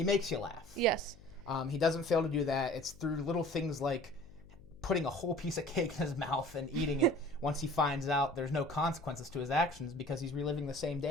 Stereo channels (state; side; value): noise; left; hum, 22 dB below the sound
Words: makes you laugh. Yes. He doesn't fail to do that. It's through little things like putting a whole piece of cake in his mouth and eating it once he finds out there's no consequences to his actions because he's reliving the same